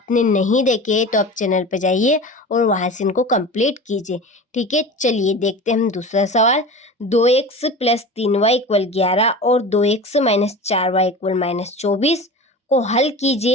नहीं देखे तो आप चैनल पर जाइए और वहां से इनको कंप्लीट कीजिए। ठीक है, चलिए देखते हैं हम दूसरा सवाल। 2x + 3y = 11 और 2x - 4y = -24 को हल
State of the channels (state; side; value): normal; both; correlation 0.33